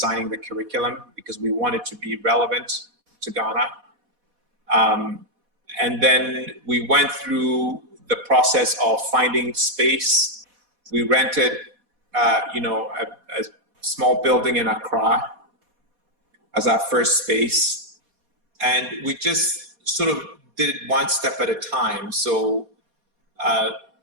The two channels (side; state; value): left; late; 4.1 ms